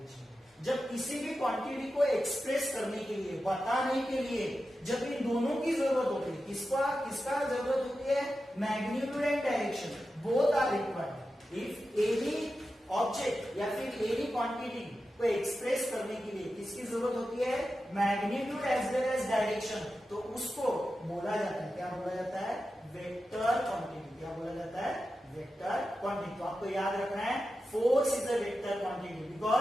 में। जब किसी भी क्वांटिटी को एक्सप्रेस करने के लिए, बताने के लिए जब इन दोनों की जरूरत होती है, किसका जरूरत होती है, magnitude and direction, both are required. If any object या फिर एनी क्वांटिटी को एक्सप्रेस करने के लिए किसकी जरूरत होती है, magnitude as well as direction, तो उसको बोला जाता है, क्या बोला जाता है, वेक्टर क्वांटिटी। क्या बोला जाता है, वेक्टर क्वांटिटी। तो आपको याद रखना है, force is a vector quantity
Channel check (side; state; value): both; normal; correlation 0.91